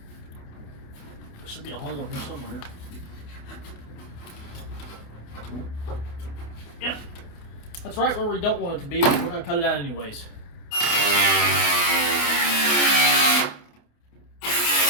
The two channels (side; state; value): right; late; 28 ms